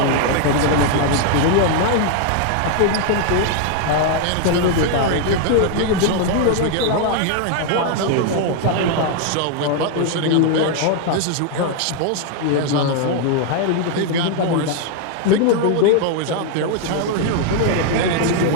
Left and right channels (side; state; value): both; different; correlation 0.00